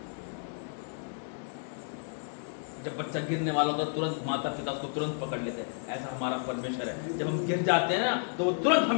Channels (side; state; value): right; silent; 56 dB below the other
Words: जब बच्चा गिरने वाला होता तुरंत माता पिता उसको तुरंत पकड़ लेते हैं। ऐसा हमारा परमेश्वर है, जब हम गिर जाते हैं ना तो वो तुरंत